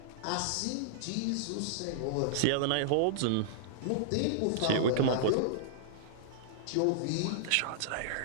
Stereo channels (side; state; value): both; different; correlation -0.01